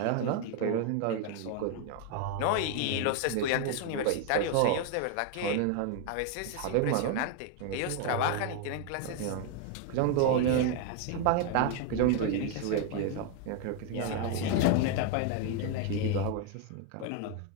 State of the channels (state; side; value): different; both; correlation 0.01